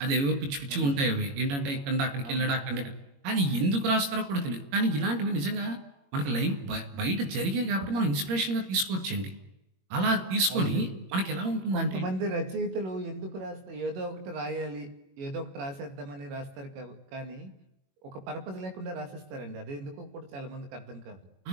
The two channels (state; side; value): late; left; 21 ms